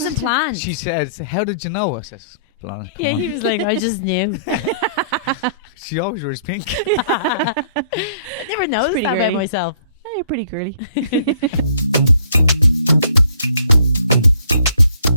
planned. She says, "How did you know?" I says, "Come yeah, on." he was like, I just knew. She always wears pink. I never noticed that about myself. Oh, you're pretty girly.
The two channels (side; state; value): both; inverted; correlation -0.60